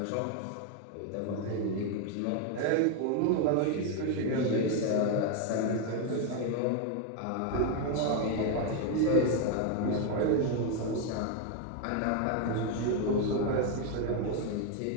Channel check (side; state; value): both; different; correlation 0.01